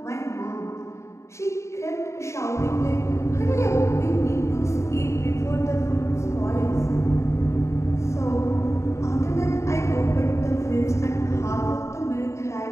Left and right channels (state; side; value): late; right; 0.14 ms